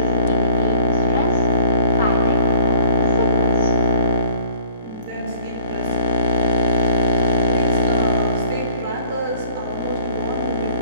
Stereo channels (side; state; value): both; inverted; correlation -0.50